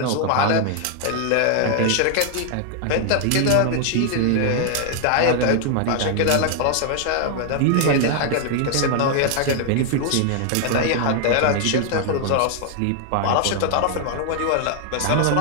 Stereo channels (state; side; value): different; both; correlation 0.00